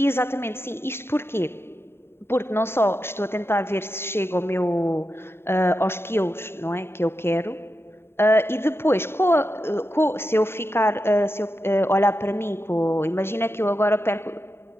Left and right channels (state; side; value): late; right; 0.11 ms